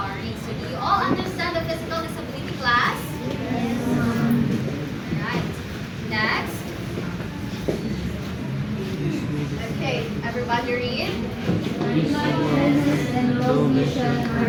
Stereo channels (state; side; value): identical; both; correlation 1.00